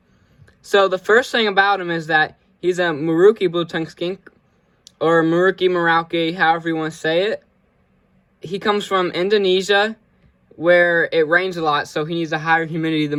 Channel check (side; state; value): both; identical; correlation 1.00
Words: So the first thing about him is that he's a Merauke Blue Tongue Skink, or Merauke, however you want to say it. He comes from Indonesia, where it rains a lot, so he needs a higher humidity